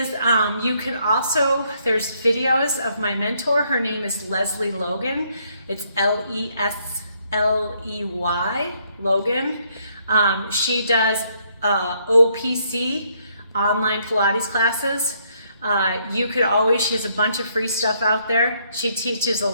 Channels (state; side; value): inverted; both; correlation -0.71